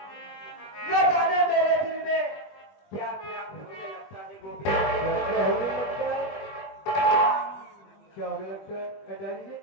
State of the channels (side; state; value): right; late; 20 ms